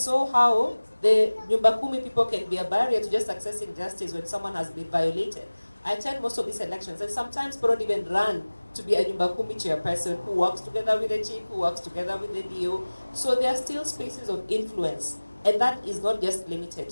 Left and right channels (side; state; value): both; inverted; correlation -1.00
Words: how the Nyumba Kumi people can be a barrier to just accessing justice when someone has been violated. I attend most of these elections, and sometimes people don't even run to be a Nyumba Kumi chairperson who works together with the chief, who works together with the DO. So there are still spaces of influence, and that is not just